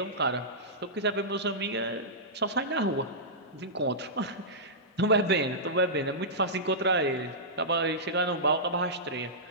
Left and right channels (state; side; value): normal; both; correlation -0.15